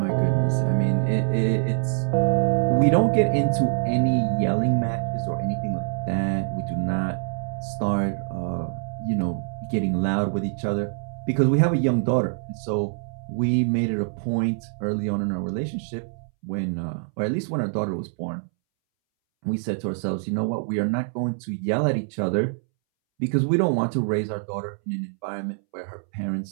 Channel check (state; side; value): silent; left; 62 dB below the other